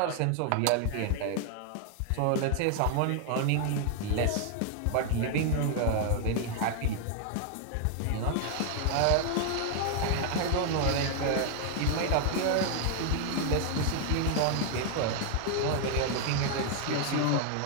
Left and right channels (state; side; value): different; both; correlation 0.00